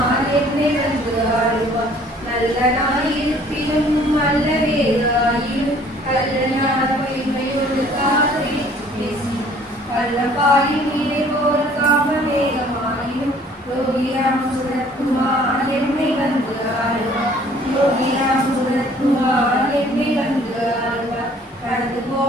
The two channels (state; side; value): normal; both; correlation 0.56